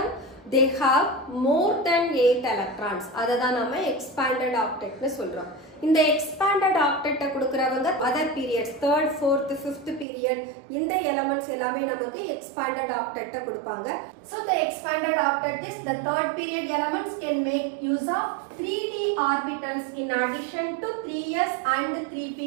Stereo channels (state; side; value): drops out; left; at 10.1 s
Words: they have more than 8 electrons. அததான் நம்ம expanded octet னு சொல்றோம். இந்த expanded octet கொடுக்கறவங்க other periods, 3rd, 4th, 5th period, இந்த elements எல்லாமே நமக்கு expanded octet கொடுப்பாங்க. So the expanded octet is the 3rd period elements can make use of 3d orbitals in addition to 3s and 3p